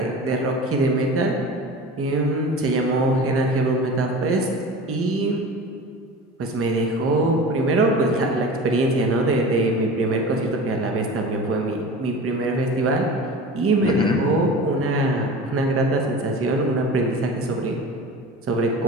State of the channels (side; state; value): both; normal; correlation 0.35